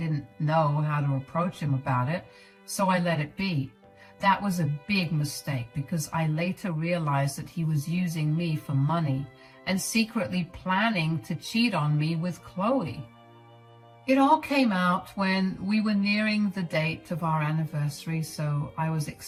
know how to approach him about it, so I let it be. That was a big mistake because I later realized that he was using me for money and secretly planning to cheat on me with Chloe. It all came out when we were nearing the date of our anniversary, so I was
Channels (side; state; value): both; identical; correlation 1.00